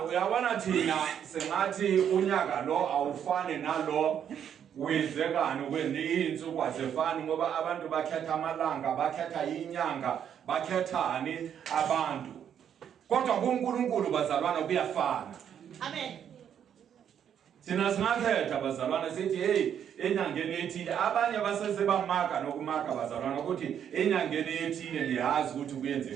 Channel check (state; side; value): quieter; left; 8.9 dB